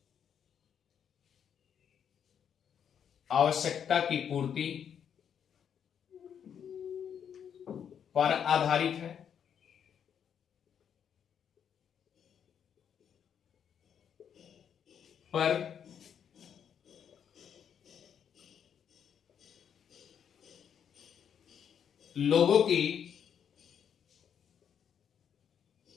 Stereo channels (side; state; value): right; quieter; 8.3 dB